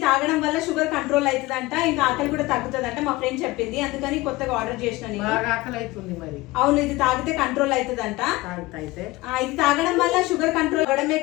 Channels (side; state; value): right; quieter; 19.9 dB